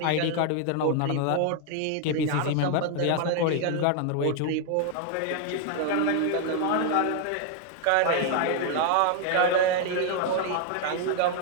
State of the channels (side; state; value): both; different; correlation 0.00